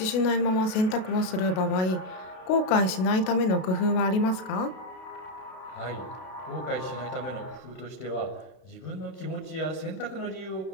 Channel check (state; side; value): late; right; 33 ms